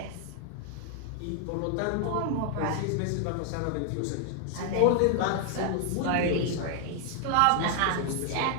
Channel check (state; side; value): different; both; correlation 0.00